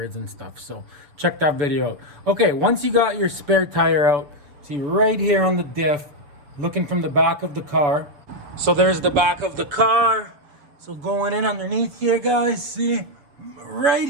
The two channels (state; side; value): late; left; 6.9 ms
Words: and stuff. So check that video out. Okay, once you got your spare tire out, see right here on the diff, looking from the back of the car. So there's the back of the car. So going in underneath here, guys, see right